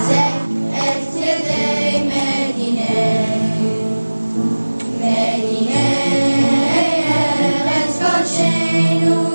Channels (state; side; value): inverted; both; correlation -1.00